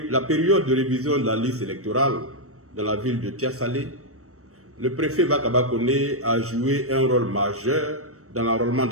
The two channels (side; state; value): left; late; 0.65 ms